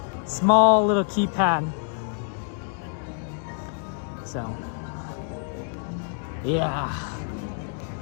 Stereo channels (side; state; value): right; silent; 58 dB below the other